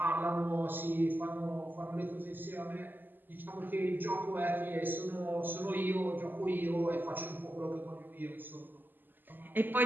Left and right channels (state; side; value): late; left; 0.091 ms